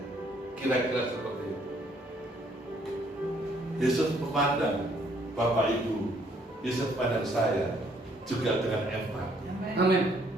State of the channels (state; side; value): normal; both; correlation 0.66